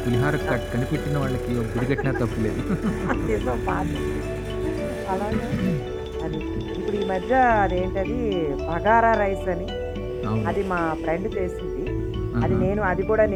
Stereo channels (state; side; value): identical; both; correlation 1.00